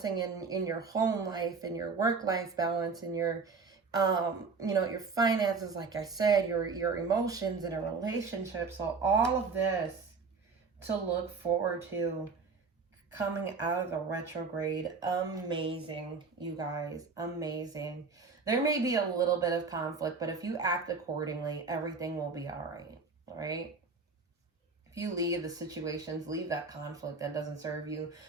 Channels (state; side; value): quieter; left; 4.6 dB